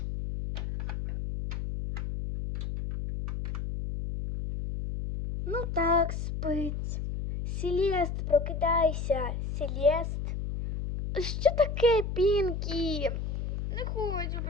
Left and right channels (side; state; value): left; noise; hum, 4 dB below the sound